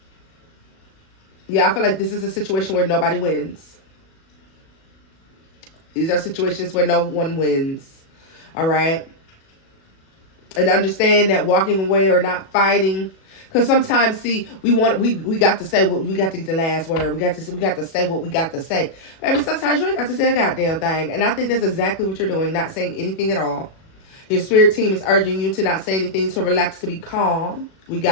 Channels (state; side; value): late; right; 37 ms